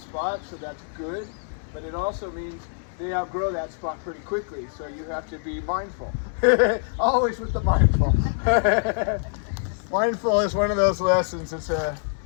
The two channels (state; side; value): silent; right; digital silence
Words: so that's good. But it also means they outgrow that spot pretty quickly, so you have to be mindful. Always with the mindful. Mindful is one of those lessons. It's